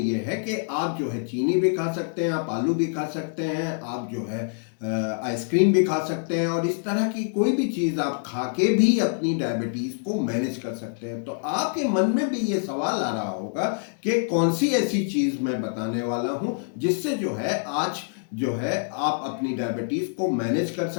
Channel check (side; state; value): right; silent; digital silence